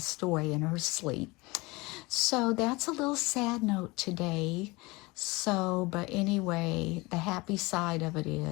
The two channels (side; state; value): right; quieter; 23.7 dB